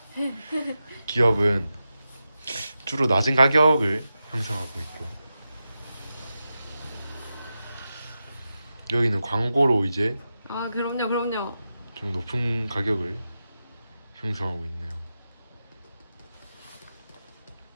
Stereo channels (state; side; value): inverted; both; correlation -0.91